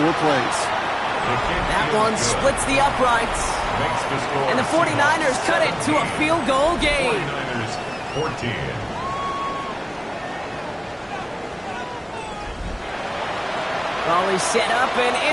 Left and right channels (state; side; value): identical; both; correlation 1.00